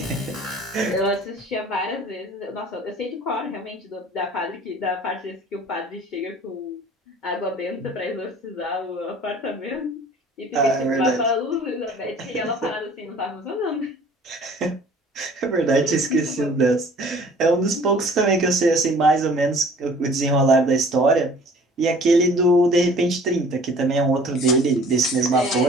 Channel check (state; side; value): normal; both; correlation 0.50